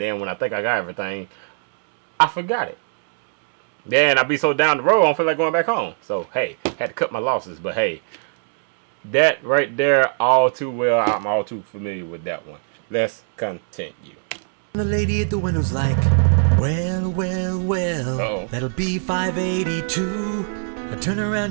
then when I think I got everything, I forgot it. Then I be so down the road, I don't feel like going back home. So, hey, had to cut my losses. But, hey, that right there, all too well. I'm all too familiar with that one. Let's continue. The lady at the window's like, well, Uh-oh. that'll be $5.82. I turn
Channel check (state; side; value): silent; left; digital silence